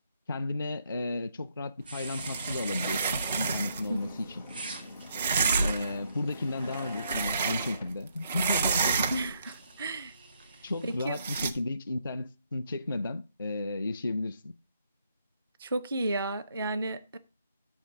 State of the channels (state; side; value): inverted; both; correlation -0.74